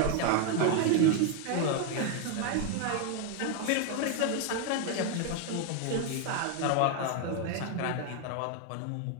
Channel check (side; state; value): both; different; correlation 0.01